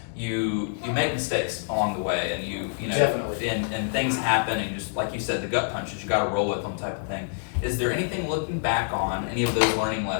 You make mistakes along the way, and you Definitely. and things happen, and just like you said, the gut punches, you got to roll with them, type of thing. Is there anything looking back on any of those learning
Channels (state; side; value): silent; right; 61 dB below the other